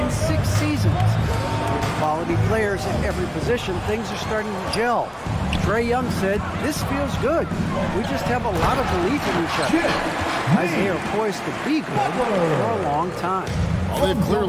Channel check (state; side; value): identical; both; correlation 1.00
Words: in 6 seasons. With quality players at every position, things are starting to gel. Trae Young said, "This feels good. We just have a lot of belief in each other." Guys, they are poised to be good for a long time. Well, they've